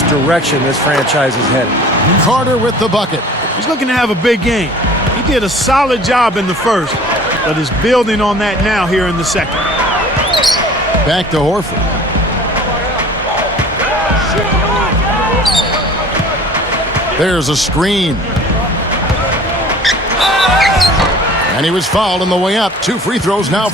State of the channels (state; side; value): normal; both; correlation 0.46